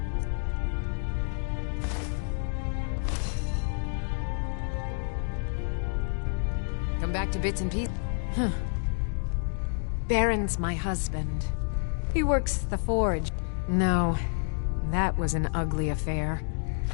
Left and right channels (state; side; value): silent; right; 56 dB below the other